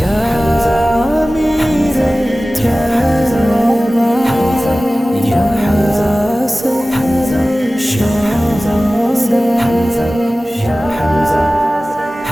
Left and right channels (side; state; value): both; normal; correlation 0.97